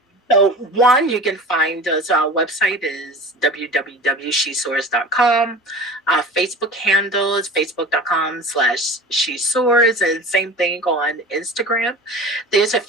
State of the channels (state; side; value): normal; both; correlation 0.36